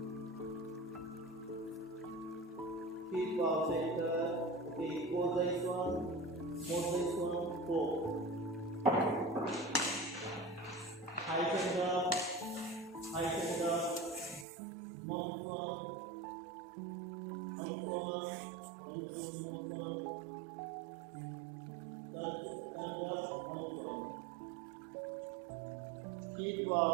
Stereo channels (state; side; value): drops out; left; at 14.5 s